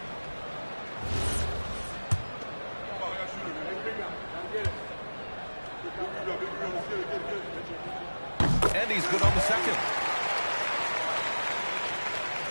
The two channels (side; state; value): both; inverted; correlation -1.00